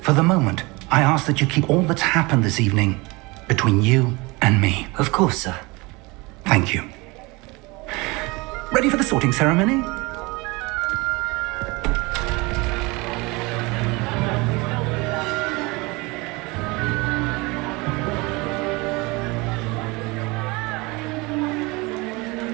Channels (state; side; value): quieter; left; 24.9 dB